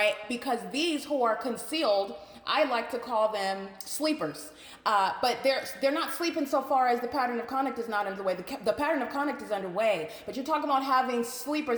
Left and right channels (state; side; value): identical; both; correlation 1.00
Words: Because these who are concealed, I like to call them sleepers. But they're not sleeping so far as the pattern of conduct is not underway. The pattern of conduct is underway, but you're talking about having